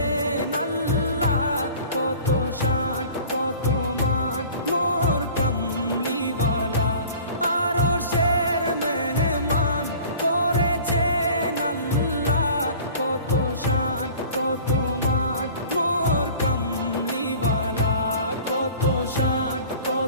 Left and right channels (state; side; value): inverted; both; correlation -0.45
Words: আল্লাহ, কত শান কত মান মোর কামলিওয়ালা। আরশের মেহমান করেছেন আল্লাহ, কত শান কত মান মোর কামলিওয়ালা, কত শান